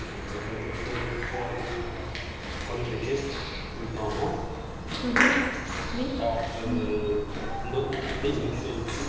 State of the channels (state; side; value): identical; both; correlation 1.00